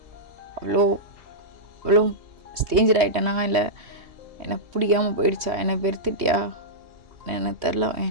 அவ்வளோ ஸ்டேஞ்சர் ஆகிட்டேனா, இல்லை என்னை பிடிக்காமல் போயிடுச்சா, என்னை வெறுத்துட்டியா எனக்கு தெரில.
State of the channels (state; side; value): late; left; 3.2 ms